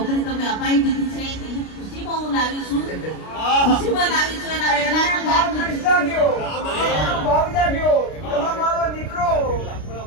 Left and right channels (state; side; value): late; right; 33 ms